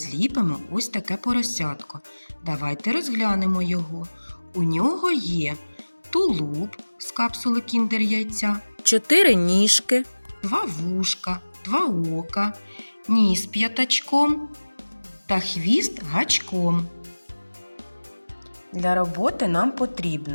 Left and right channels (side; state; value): both; inverted; correlation -1.00